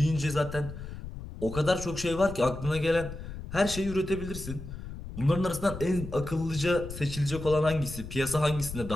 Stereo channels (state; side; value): noise; left; rumble, 10 dB below the sound